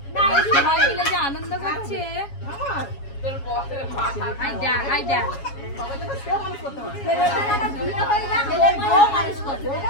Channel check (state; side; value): late; right; 7.2 ms